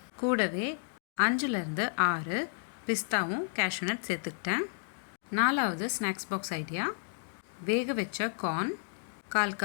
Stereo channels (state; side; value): silent; right; 56 dB below the other